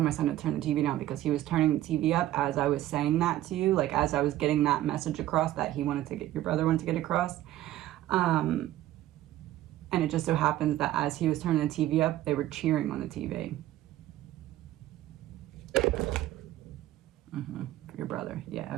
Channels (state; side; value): quieter; left; 14.3 dB